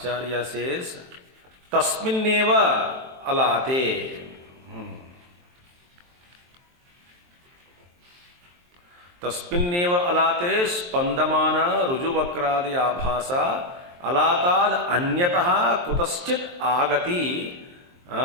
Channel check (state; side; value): late; left; 23 ms